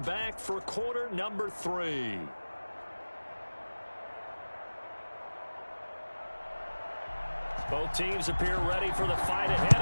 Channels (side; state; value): both; inverted; correlation -1.00